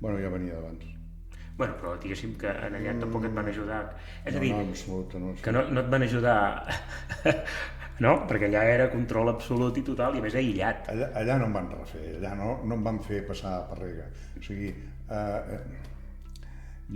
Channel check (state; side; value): identical; both; correlation 1.00